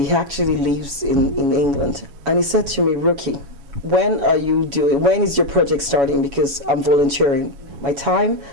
He actually lives in England, and he said to me, Ruki, when is your project starting? Because I'm volunteering my time,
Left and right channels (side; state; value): left; late; 7.1 ms